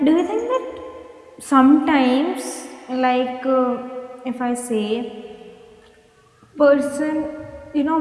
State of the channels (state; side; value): identical; both; correlation 1.00